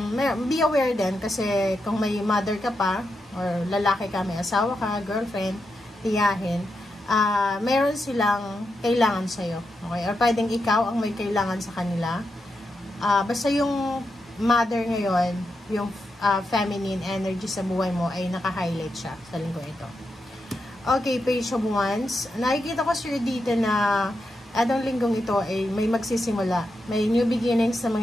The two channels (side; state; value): both; normal; correlation 0.86